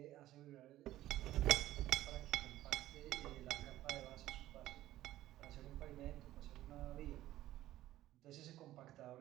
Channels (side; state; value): left; quieter; 14.6 dB